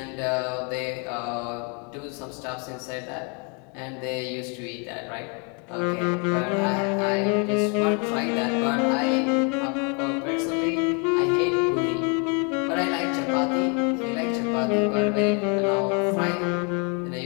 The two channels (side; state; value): right; quieter; 35.7 dB